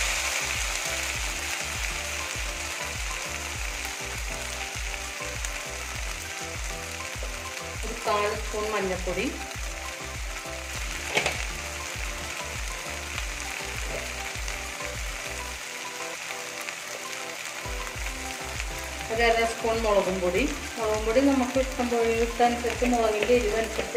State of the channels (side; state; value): both; identical; correlation 1.00